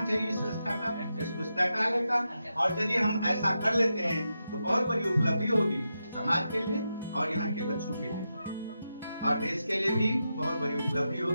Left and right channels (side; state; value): both; inverted; correlation -0.88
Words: चाहिए इस संस्था का, इस पुस्तकालय का। और यदि हम ऐसा कर लेते हैं तो बहुत बड़ी उपलब्धि होगी समाज के लिए और यहाँ के बच्चों के लिए और देश के लिए भी बहुत बड़ी उपलब्धि